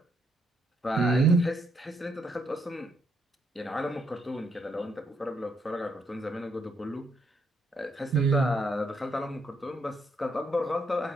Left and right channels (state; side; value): normal; both; correlation 0.75